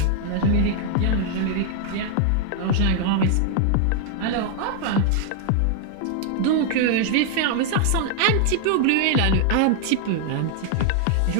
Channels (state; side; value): different; both; correlation 0.00